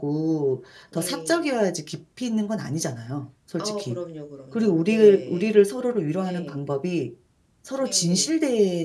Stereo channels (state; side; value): identical; both; correlation 1.00